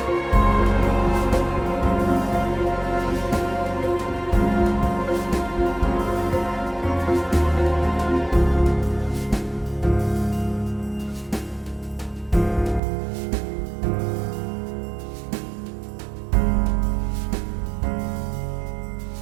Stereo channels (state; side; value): drops out; left; at 12.8 s